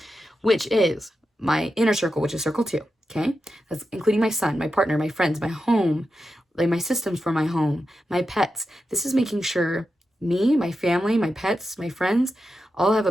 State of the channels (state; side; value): normal; both; correlation 0.89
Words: Which is my inner circle, which is circle 2. Okay? That's including my son, my partner, my friends, my home, like my systems for my home, my pets. This is making sure me, my family, my pets, my friends all have